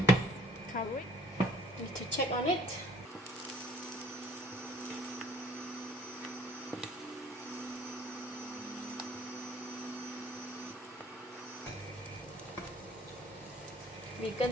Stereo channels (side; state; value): both; normal; correlation 0.56